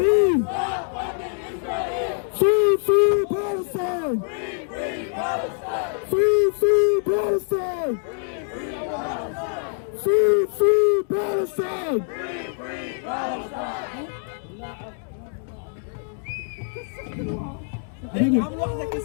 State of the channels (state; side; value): silent; right; digital silence